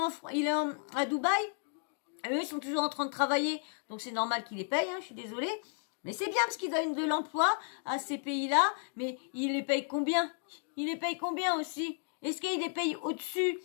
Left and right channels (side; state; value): right; silent; 56 dB below the other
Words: est à Dubaï. Et eux, ils sont toujours en train de travailler. Donc, c'est normal qu'ils les payent, je suis désolée. Mais c'est bien parce qu'ils donnent de l'emploi à ces pays-là. Mais ils les payent combien? Ils les payent combien aussi? Est-ce qu'ils les payent au-dessus